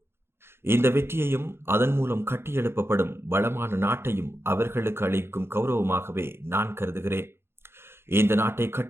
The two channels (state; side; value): late; left; 0.12 ms